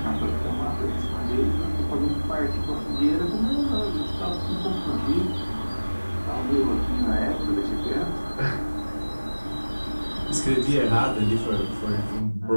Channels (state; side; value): inverted; both; correlation -1.00